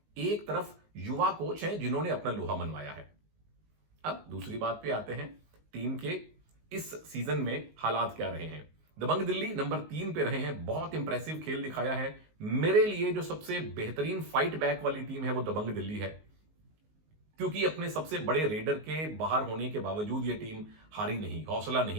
एक तरफ युवा कोच हैं जिन्होंने अपना लोहा मनवाया है। अब दूसरी बात पे आते हैं, टीम के इस सीजन में हालात क्या रहे हैं। दबंग दिल्ली नंबर 3 पे रहे हैं, बहुत इंप्रेसिव खेल दिखाया है। मेरे लिए जो सबसे बेहतरीन फाइट बैक वाली टीम है वो दबंग दिल्ली है, क्योंकि अपने सबसे बड़े रेडर के बाहर होने के बावजूद ये टीम हारी नहीं, हौसला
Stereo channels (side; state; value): left; late; 19 ms